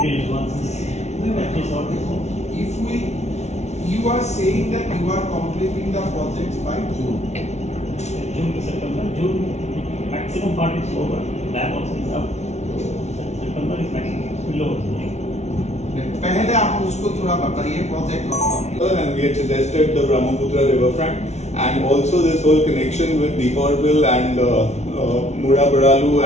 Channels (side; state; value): right; late; 0.32 ms